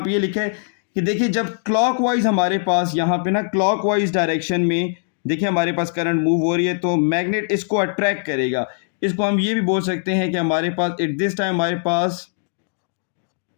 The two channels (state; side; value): silent; right; digital silence